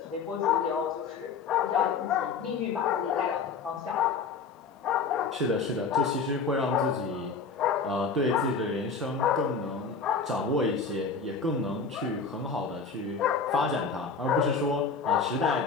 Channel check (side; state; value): right; quieter; 5.1 dB